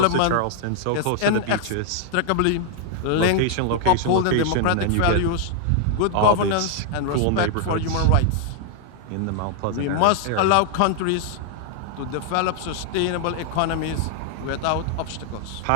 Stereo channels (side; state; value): both; different; correlation 0.00